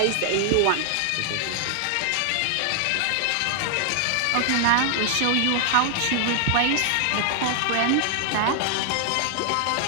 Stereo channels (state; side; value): different; both; correlation 0.00